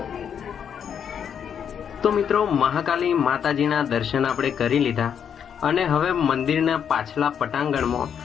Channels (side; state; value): right; quieter; 8.0 dB